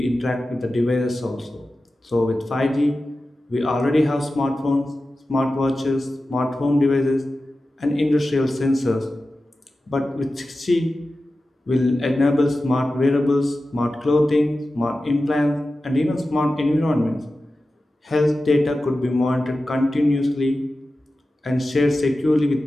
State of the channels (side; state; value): both; normal; correlation 0.94